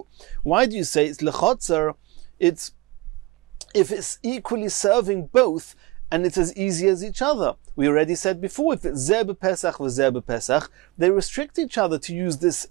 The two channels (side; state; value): left; quieter; 21.3 dB